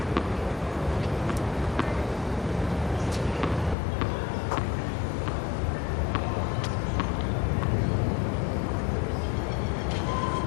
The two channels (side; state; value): right; drops out; at 3.8 s